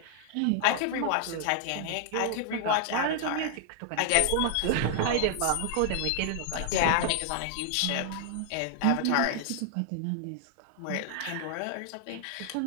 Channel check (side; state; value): both; different; correlation 0.00